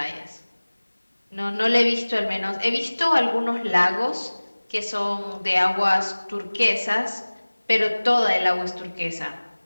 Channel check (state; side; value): inverted; both; correlation -1.00